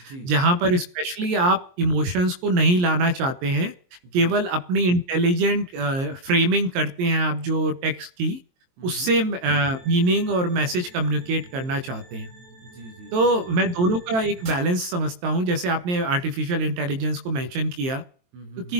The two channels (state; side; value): late; left; 22 ms